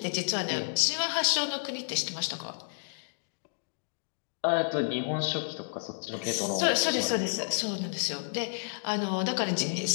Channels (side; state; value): right; silent; digital silence